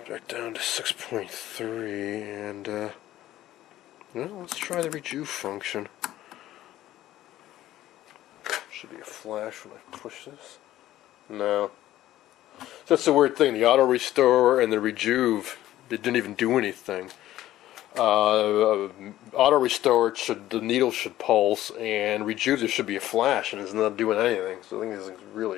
back down to 6.3 and well, let's try the rejuve function. Should be a flash when I push this. No. That's the weird thing. The auto restore and the rejuve, they didn't even do anything. Auto restore the needle should pulse, and rejuve there should be a flash, and it's not doing anything. So I think this thing's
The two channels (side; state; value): right; quieter; 14.1 dB